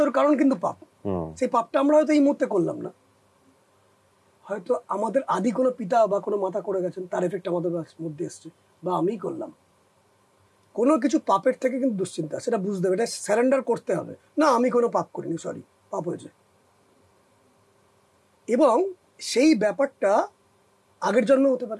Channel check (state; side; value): identical; both; correlation 1.00